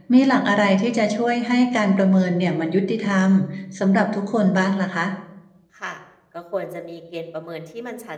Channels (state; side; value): identical; both; correlation 1.00